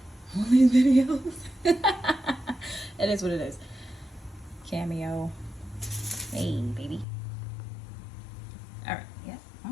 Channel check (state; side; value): drops out; right; at 7.1 s